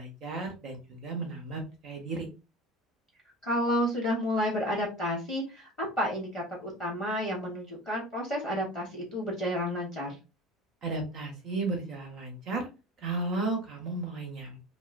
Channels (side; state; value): both; normal; correlation 0.34